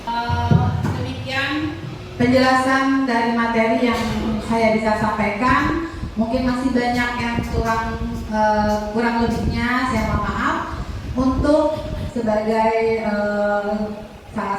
Demikian penjelasan dari materi yang saya bisa sampaikan. Mungkin masih banyak yang kurang lebihnya saya mohon maaf. Untuk sebagai salah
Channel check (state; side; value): identical; both; correlation 1.00